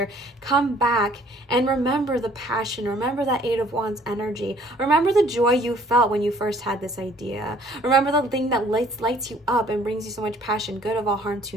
come back and remember the passion, remember that Eight of Wands energy, remember the joy you felt when you first had this idea, remember the thing that lights you up and brings you so much passion, good of all, harm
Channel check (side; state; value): both; normal; correlation 0.58